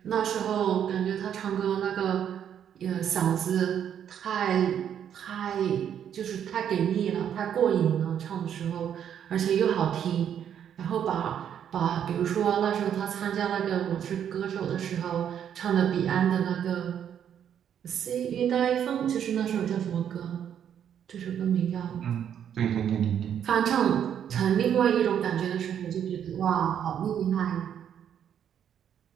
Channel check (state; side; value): quieter; left; 9.1 dB